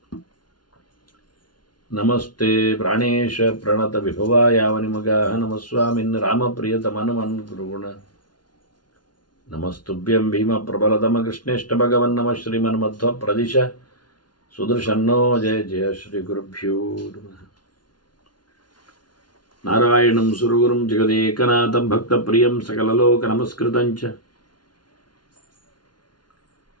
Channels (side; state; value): right; late; 0.70 ms